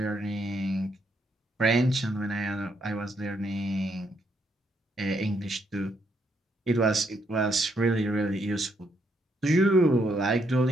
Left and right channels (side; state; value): both; normal; correlation 0.75